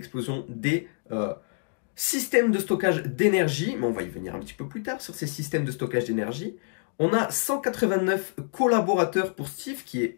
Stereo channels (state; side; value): silent; right; digital silence